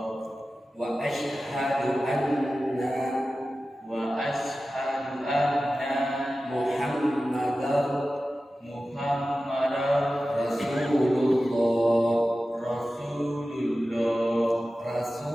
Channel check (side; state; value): both; normal; correlation 0.94